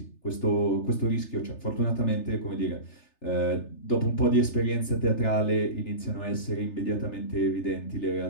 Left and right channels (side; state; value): right; late; 3.3 ms